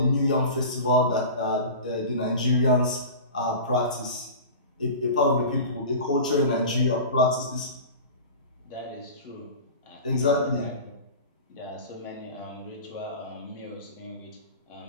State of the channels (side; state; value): both; inverted; correlation -0.34